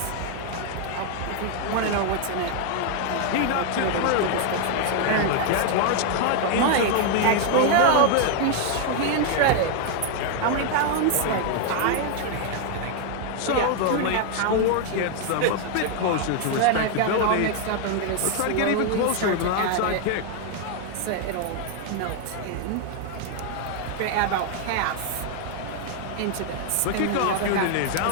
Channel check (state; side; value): different; both; correlation 0.00